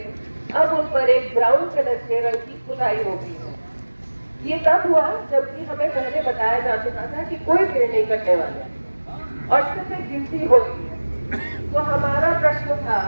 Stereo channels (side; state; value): both; inverted; correlation -1.00